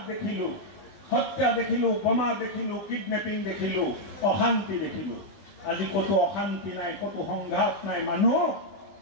দেখিলো হত্যা দেখিলো বোমা দেখিলো কিডনেপিং দেখিলো অশান্তি দেখিলো আজি কত অশান্তি নাই কত সংঘাত নাই মানুহ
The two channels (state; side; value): late; right; 19 ms